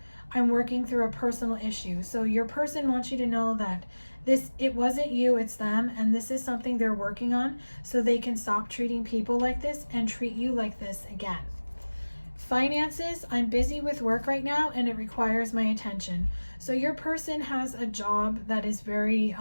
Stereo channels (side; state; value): both; inverted; correlation -1.00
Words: I'm working through a personal issue. So your person wants you to know that it wasn't you, it's them, and this is something they're working on so they can stop treating people like this and treat you like this again. Finances, I'm busy with work right now and it requires my attention. So your person has a job that is very